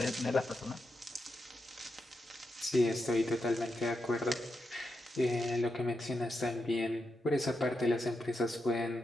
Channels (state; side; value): normal; both; correlation 0.85